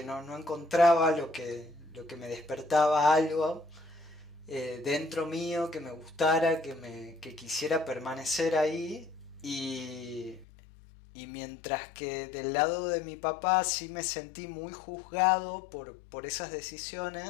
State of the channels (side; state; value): right; drops out; at 10.5 s